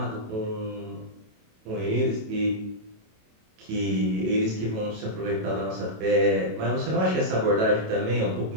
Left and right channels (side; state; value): left; late; 27 ms